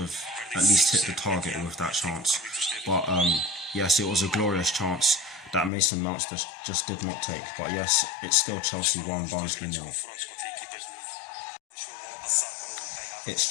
at least hit the target with that chance. But yes, it was a glorious chance that Mason Mount just did not take. But yes, it's still Chelsea 1, Barnsley 0.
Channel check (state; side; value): drops out; right; at 5.7 s